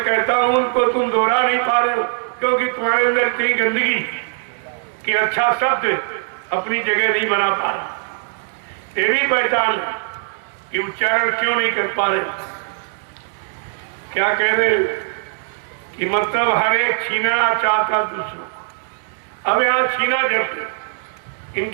कहता हूं उनको तुम दोहरा नहीं पा रहे हो, क्योंकि तुम्हारे अंदर इतनी गंदगी कि अच्छा शब्द अपनी जगह नहीं बना पा रहा। ये भी पहचान कि उच्चारण क्यों नहीं कर पा रहे। क्या कह रहे कि मतलब हर एक छीनना चाहता दूसरों। अब यहाँ छीना जब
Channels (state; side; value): silent; left; 64 dB below the other